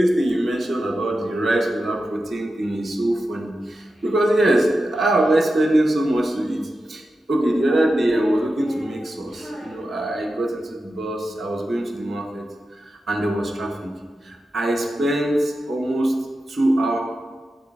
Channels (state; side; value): normal; both; correlation 0.91